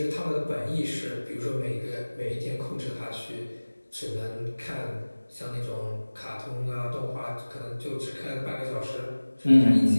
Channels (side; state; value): both; inverted; correlation -1.00